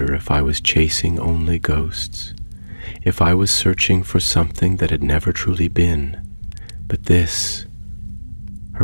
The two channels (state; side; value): inverted; both; correlation -1.00